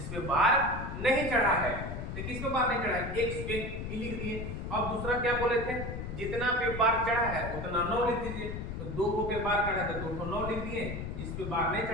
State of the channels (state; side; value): noise; left; rumble, 6 dB below the sound